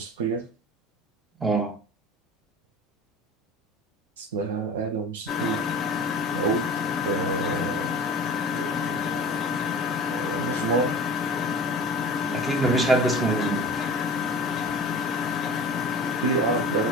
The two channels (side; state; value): both; normal; correlation 0.38